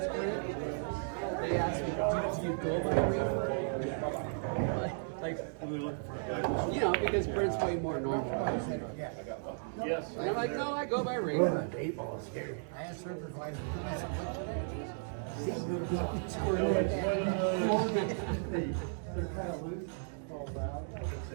Brent, they ask me, do you go by Reaper? Like, you know, because Brent's way more normal. Yeah. And I'm like, no, I go by Reaper. I asked supervisor, I said, what's your name?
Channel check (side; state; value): left; silent; digital silence